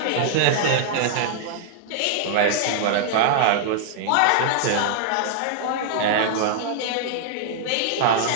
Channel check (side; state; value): both; different; correlation -0.01